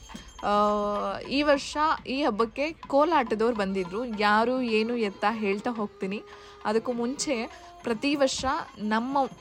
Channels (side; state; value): both; identical; correlation 1.00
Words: ಈ ವರ್ಷ ಈ ಹಬ್ಬಕ್ಕೆ ಕೋಲಾಟದವ್ರು ಬಂದಿದ್ದರು. ಯಾರು ಏನು ಎತ್ತ ಹೇಳ್ತಾ ಹೋಗ್ತೀನಿ. ಅದಕ್ಕೂ ಮುಂಚೆ ಪ್ರತಿ ವರ್ಷ ನಮ್ಮ